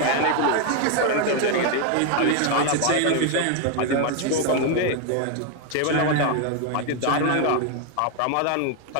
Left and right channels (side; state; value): both; different; correlation 0.01